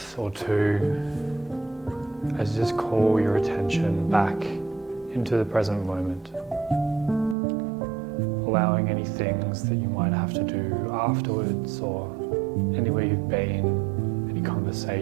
or two as you just call your attention back into the present moment. Allowing any things that you might have to do afterwards or anywhere you've been, any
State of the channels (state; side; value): drops out; left; at 7.4 s